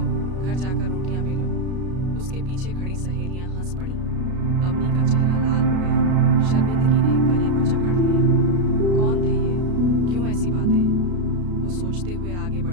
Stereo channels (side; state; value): left; late; 33 ms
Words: घर जाकर रोटियां बेलो। उसके पीछे खड़ी सहेलियां हंस पड़ी। अवनी का चेहरा लाल हो गया। शर्मिंदगी ने गले को जकड़ लिया। कौन थे ये? क्यों ऐसी बातें? वो सोचते हुए आगे